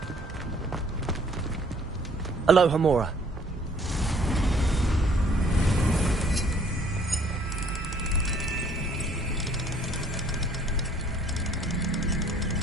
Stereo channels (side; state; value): both; normal; correlation 0.59